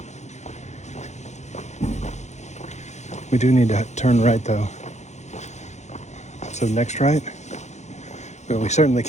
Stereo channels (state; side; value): late; right; 0.33 ms